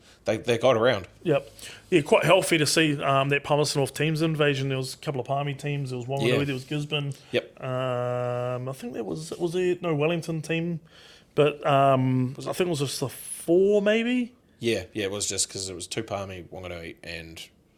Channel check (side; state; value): both; identical; correlation 1.00